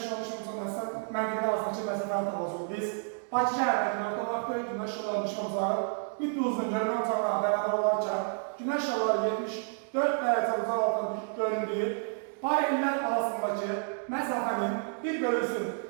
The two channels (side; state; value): left; silent; 58 dB below the other